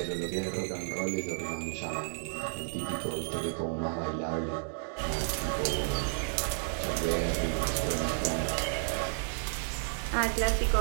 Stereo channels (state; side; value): silent; left; digital silence